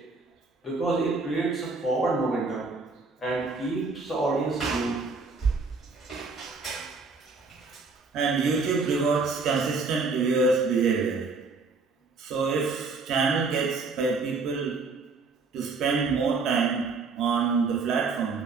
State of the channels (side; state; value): left; quieter; 4.2 dB